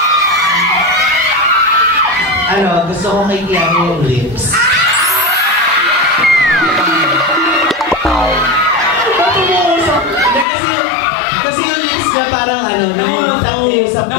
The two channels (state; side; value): drops out; right; at 10.5 s